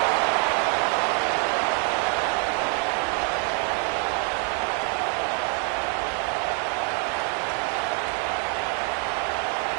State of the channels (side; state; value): left; quieter; 34.3 dB